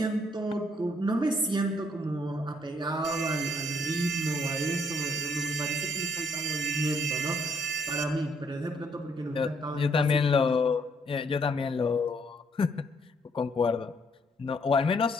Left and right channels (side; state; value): both; normal; correlation 0.69